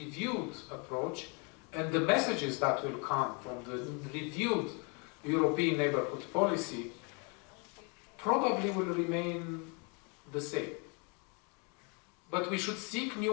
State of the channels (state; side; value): quieter; right; 33.9 dB